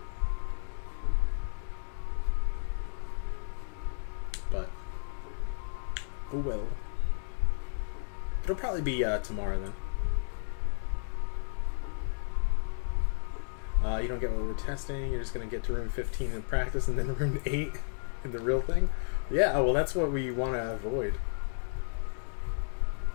But oh well. It'll probably be tomorrow then. You don't get what we're testing. You're just gonna get to room 15 in practice, and then room 8 in the real thing. Yeah, well, that's what we want to avoid.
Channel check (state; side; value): silent; right; digital silence